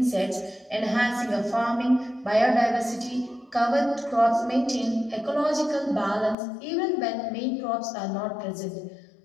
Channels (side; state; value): right; drops out; at 6.4 s